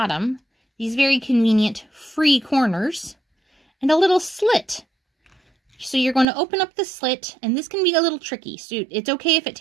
these very convenient free corners, and a little slit. So you're going to open up the slit, and this can be a little tricky. So it's okay if it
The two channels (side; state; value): left; drops out; at 6.2 s